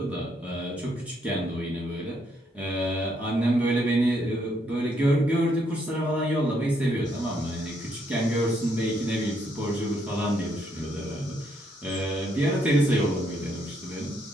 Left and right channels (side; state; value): both; normal; correlation 0.73